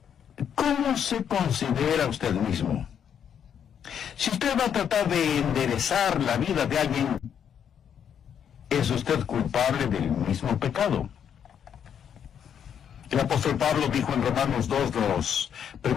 ¿cómo se considera usted mismo? Si usted va a tratar de enderezar la vida de alguien, ¿es usted culpable del mismo pecado? El apóstol Pablo dijo en Romanos 2, los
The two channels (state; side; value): quieter; right; 8.4 dB